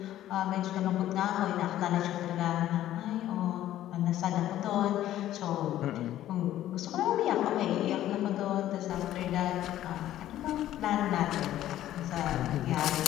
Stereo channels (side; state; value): right; quieter; 13.0 dB